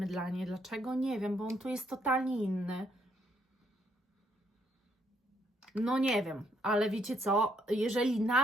Dlaczego? Nie wiem, bo on tu jest totalnie inny. No nie wiem, ale wiecie co, jeżeli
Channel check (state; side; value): normal; both; correlation 0.71